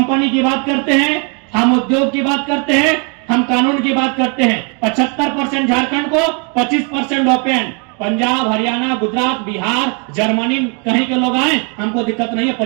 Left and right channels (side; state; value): left; quieter; 36.2 dB